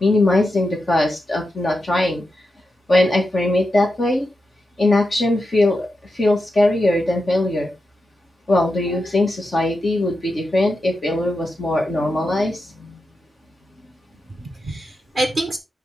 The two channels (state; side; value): normal; both; correlation 0.88